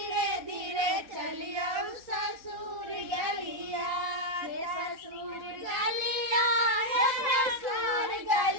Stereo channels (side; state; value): left; late; 3.7 ms